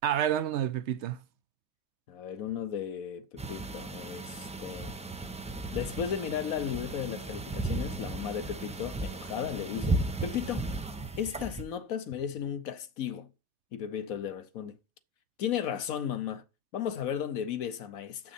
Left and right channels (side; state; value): both; normal; correlation 0.19